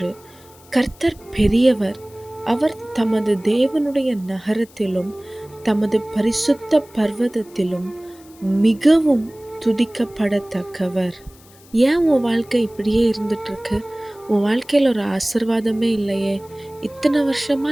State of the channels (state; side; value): noise; left; hiss, 26 dB below the sound